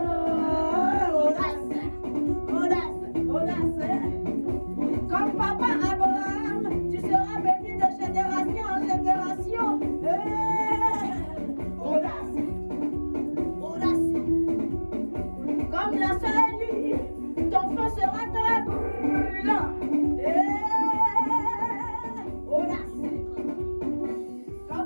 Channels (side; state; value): both; inverted; correlation -1.00